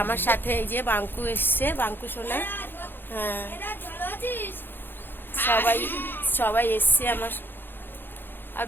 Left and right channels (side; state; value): right; late; 0.099 ms